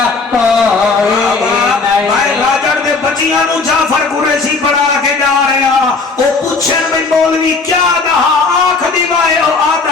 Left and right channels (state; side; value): quieter; right; 4.1 dB